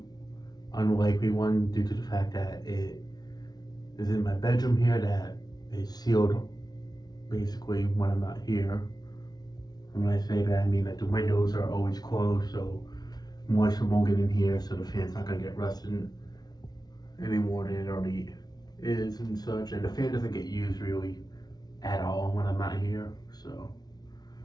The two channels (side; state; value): right; late; 0.19 ms